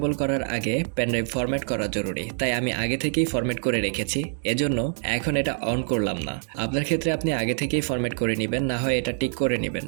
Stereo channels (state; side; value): silent; left; digital silence